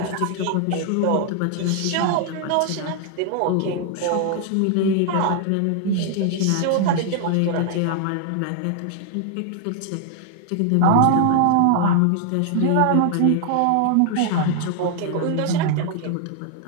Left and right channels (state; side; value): different; both; correlation 0.00